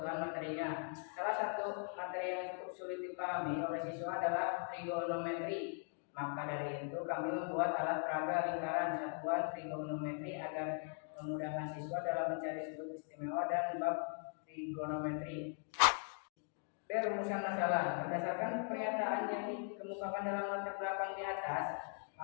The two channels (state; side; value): silent; right; 51 dB below the other